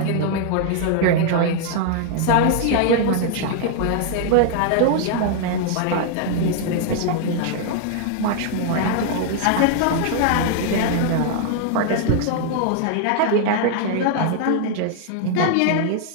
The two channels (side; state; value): both; different; correlation 0.00